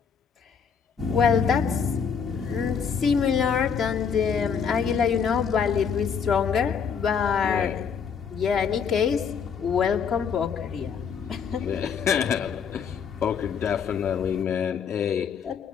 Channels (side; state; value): right; quieter; 6.7 dB